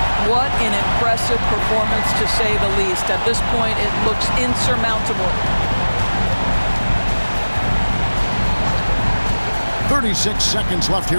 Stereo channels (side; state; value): both; inverted; correlation -1.00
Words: What an impressive performance, to say the least. At this point, it looks insurmountable. 36 seconds left